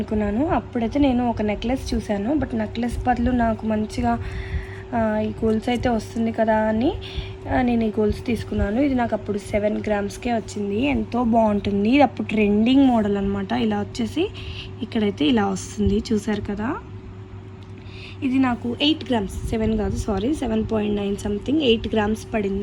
అప్పుడైతే నేను ఒక నెక్లెస్ చూశాను. బట్ నెక్లెస్ బదులు నాకు మంచిగా ఈ గోల్స్ అయితే వస్తుంది కదా అని నేను ఈ గోల్స్ తీసుకున్నాను. ఇది నాకు అప్పుడు 7 gramsకే వచ్చింది. ఎంతో బాగుంటుంది. ఇది అప్పుడు ట్రెండింగ్ మోడల్ అనమాట. ఇలా వచ్చేసి ఇక్కడైతే ఇలా వస్తుంది, చూసారు కదా. ఇది నాకు 8 grams, 7 కాదు సారీ, 7.9 సంథింగ్ 8 grams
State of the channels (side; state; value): both; identical; correlation 1.00